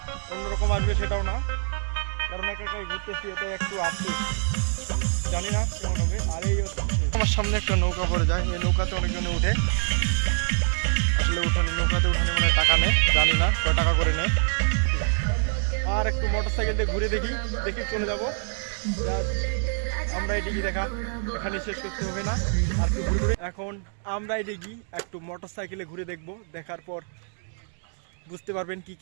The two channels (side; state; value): left; silent; 57 dB below the other